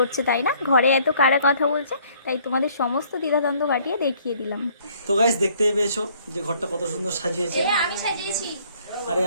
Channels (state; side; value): inverted; both; correlation -0.61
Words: তাই না? ঘরে এত কারা কথা বলছে, তাই তোমাদের সমস্ত দ্বিধাদ্বন্দ্ব কাটিয়ে দেখিয়ে দিলাম। তো গাইস, দেখতেই পেয়েছো যে ঘরটা কত সুন্দর সাজিয়েছে। আমি সাজিয়েছি। আরে